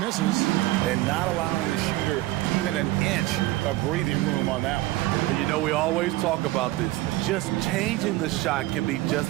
And not allowing the shooter even an inch of breathing room on that one. You know, we always talk about this. Just changing the shot can be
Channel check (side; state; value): left; quieter; 17.8 dB